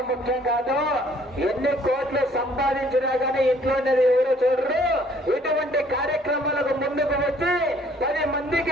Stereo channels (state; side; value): normal; both; correlation 0.60